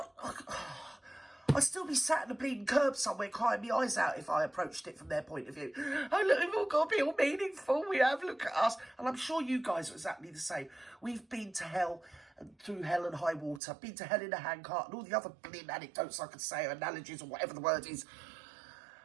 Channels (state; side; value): drops out; left; at 13.6 s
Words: I'd still be sat in a bleeding curb somewhere crying my eyes out if I approached it from their point of view. Oh, look, we've all got to be all meaningful. We have, look at us. And I'm sure you guys are exactly the same. We've been to hell, and through hell and high water, been to hell in a handcart, and all the other bleeding anecdotes I could say, or analogies, or whatever the word is.